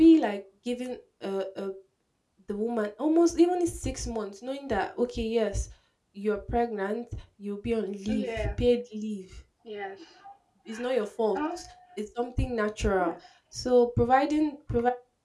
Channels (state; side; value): identical; both; correlation 1.00